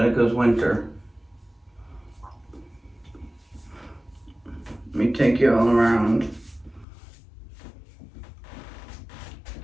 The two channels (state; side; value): drops out; right; at 6.9 s